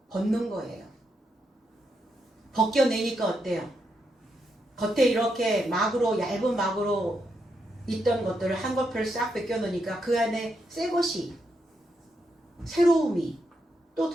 벗는 거예요. 벗겨내니까 어때요? 겉에 이렇게 얇은 막으로 있던 것들을 한꺼풀 싹 벗겨놓으니까 그 안에 새 것이, 새로움이 또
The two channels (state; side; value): normal; both; correlation 0.81